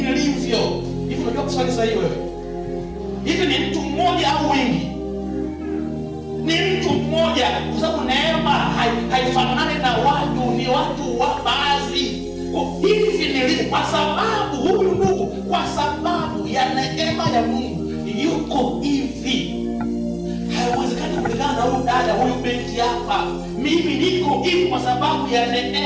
Hivi unajua kuswali sahihi wewe? Hivi ni mtu mmoja au wengi? Ni mtu mmoja, kwa sababu neema haifanani na watu, ni watu wa baadhi. Hivi nilivyo kwa sababu huyu ndugu, kwa sababu ya neema ya Mungu yuko hivi. Haiwezekani kulingana na huyu dada, huyu binti hapa. Mimi niko hivi kwa sababu ya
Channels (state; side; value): identical; both; correlation 1.00